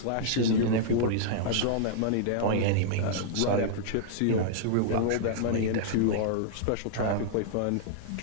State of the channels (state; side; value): different; both; correlation -0.02